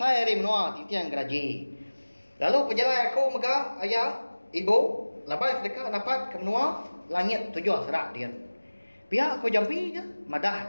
dari menua titiang geraji. Lalu pejalan aku megak ayah. Ibu. Lepas dekat dapat ke menua. Langit 7 serak dia. Pihak aku jampi je.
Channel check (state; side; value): inverted; both; correlation -1.00